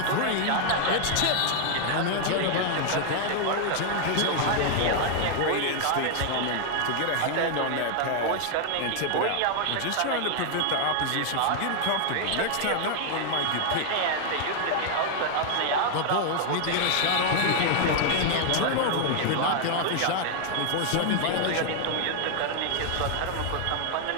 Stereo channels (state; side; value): different; both; correlation 0.00